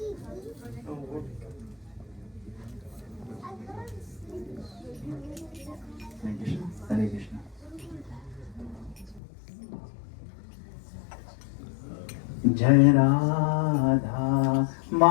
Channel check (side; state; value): right; drops out; at 9.2 s